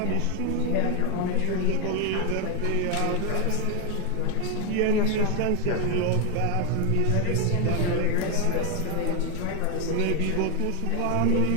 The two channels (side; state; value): both; different; correlation 0.01